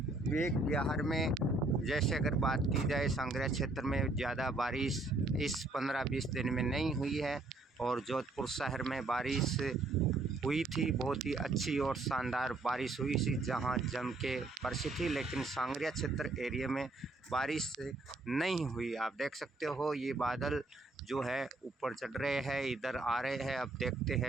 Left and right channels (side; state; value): left; quieter; 3.0 dB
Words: वेक विहार में जैसे अगर बात की जाए, सांगरिया क्षेत्र में ज़्यादा बारिश इस 15-20 दिन में नहीं हुई है। और जोधपुर शहर में बारिश हुई थी, बहुत ही अच्छी और शानदार बारिश हुई थी, जहां जम के बरसी थी। लेकिन सांगरिया क्षेत्र एरिया में बारिश नहीं हुई। आप देख सकते हो ये बादल जो है ऊपर चढ़ रहे हैं, इधर आ रहे हैं। अब देखते